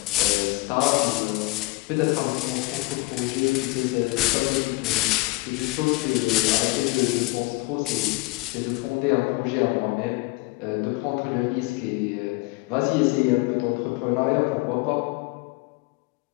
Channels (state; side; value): quieter; right; 23.0 dB